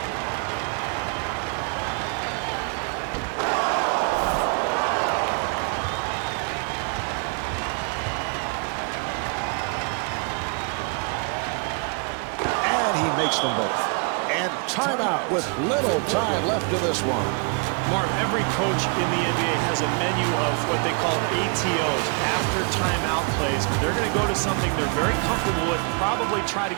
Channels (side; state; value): left; quieter; 36.5 dB